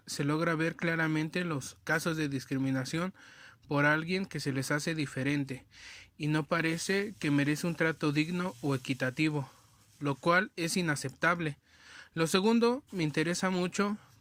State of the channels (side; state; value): both; identical; correlation 1.00